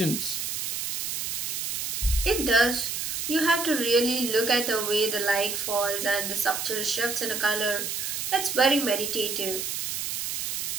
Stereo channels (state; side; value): noise; right; hiss, 2 dB below the sound